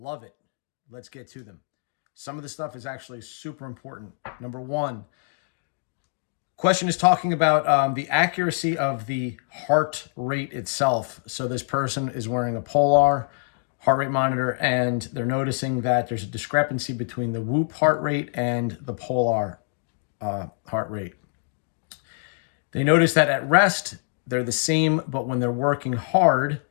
it. Let's get to them. Some of the stuff is actually super important. Number one, question is talking about the accuracy of the heart rate itself. So this person is wearing a Polar heart rate monitor, and they're noticing that there's a discrepancy between the Whoop heart rate and the Polar heart rate. They notice that at rest, they're the same, but when they're working hard,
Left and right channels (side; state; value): right; silent; digital silence